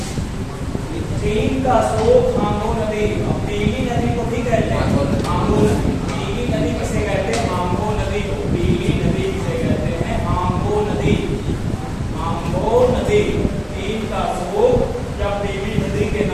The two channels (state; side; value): identical; both; correlation 1.00